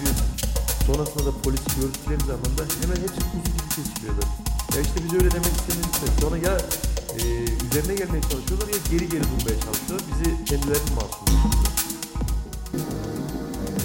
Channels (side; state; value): both; identical; correlation 1.00